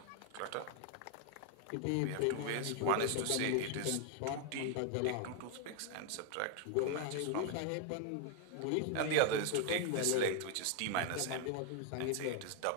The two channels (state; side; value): different; both; correlation 0.01